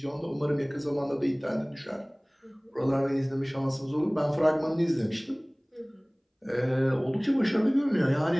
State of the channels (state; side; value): identical; both; correlation 1.00